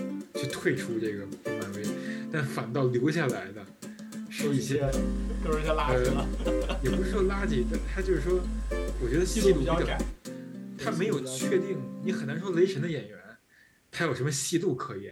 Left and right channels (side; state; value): both; identical; correlation 1.00